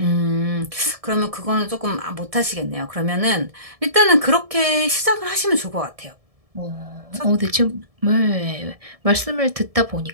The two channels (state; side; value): late; left; 1.7 ms